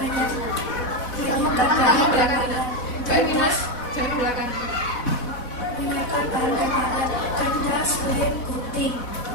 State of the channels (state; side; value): late; right; 4.1 ms